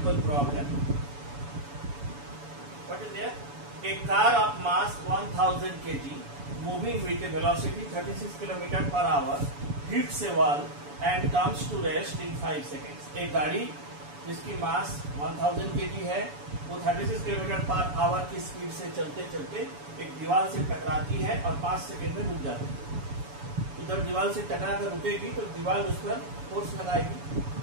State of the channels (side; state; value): left; late; 7.0 ms